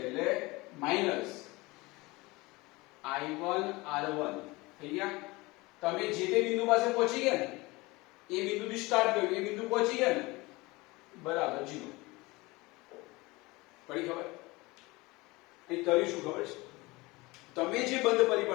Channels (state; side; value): quieter; right; 22.7 dB